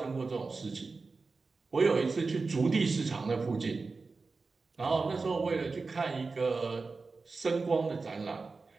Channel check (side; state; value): left; quieter; 4.1 dB